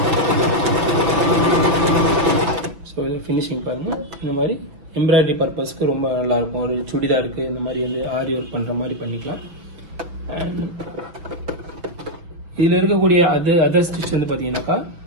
ஸோ இது ஃபினிஷிங் பாருங்கள். இந்த மாதிரி எம்ப்ராய்டரி பர்பஸ்க்கு ரொம்ப நல்லாயிருக்கும். ஒரு சுடிதாருக்கு இந்த மாதிரி வந்து ஆரி ஒர்க் பண்ணுற மாதிரி பண்ணிக்கலாம். அண்ட் இதில் இருக்கக்கூடிய அதர் ஸ்டிச் வந்து பார்த்தீங்கன்னாக்கா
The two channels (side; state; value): left; late; 6.1 ms